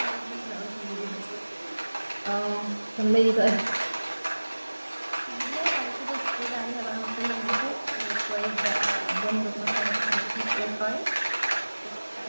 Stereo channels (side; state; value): both; inverted; correlation -1.00